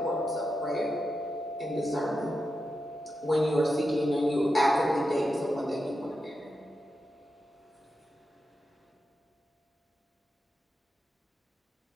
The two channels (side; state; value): both; normal; correlation 0.88